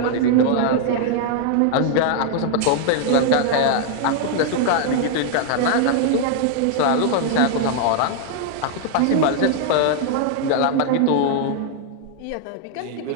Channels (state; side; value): different; both; correlation 0.00